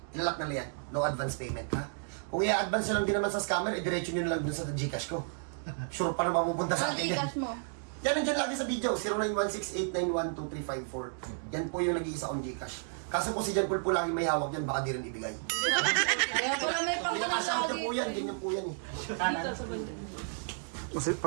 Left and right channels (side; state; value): left; silent; digital silence